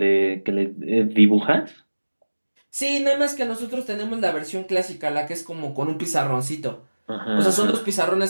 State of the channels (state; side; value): inverted; both; correlation -1.00